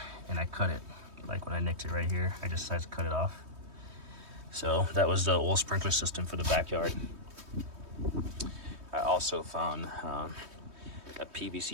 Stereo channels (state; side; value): late; left; 3.2 ms